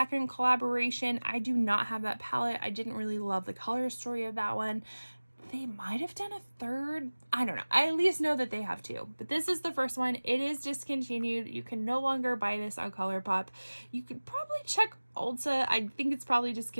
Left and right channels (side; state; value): both; inverted; correlation -1.00